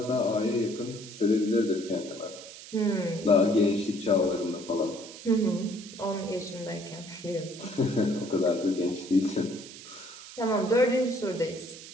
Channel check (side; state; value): right; noise; hiss, 15 dB below the sound